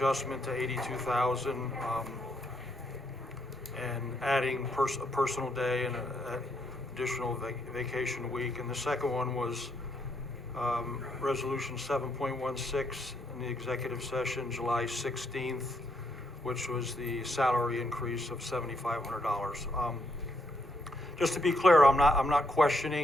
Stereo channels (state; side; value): normal; both; correlation 0.76